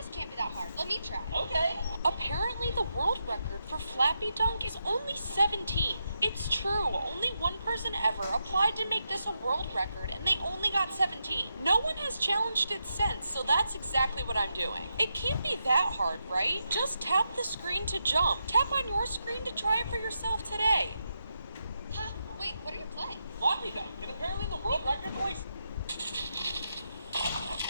can't be that hard. Let me try. Okay. Apparently the world record for Flappy Dunk is only 17. It's true, only one person ever applied to make this a world record and they only got 17. No one has challenged it since, so that's exactly what I'm doing. It can't be that hard, right? Just tap the screen to jump. Tap on your screen to try it for yourself today. Huh? Wait, what are you playing? Floppy dunk, and apparently the world record's only...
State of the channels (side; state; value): both; inverted; correlation -0.84